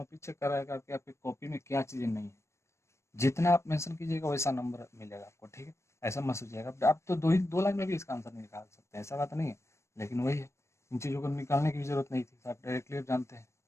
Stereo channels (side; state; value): right; late; 0.13 ms